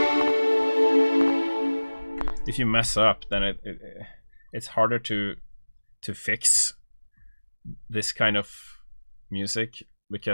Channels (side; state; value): both; inverted; correlation -1.00